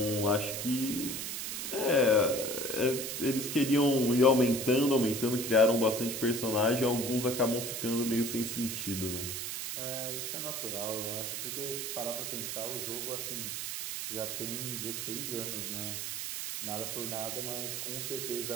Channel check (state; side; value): noise; right; hiss, 4 dB below the sound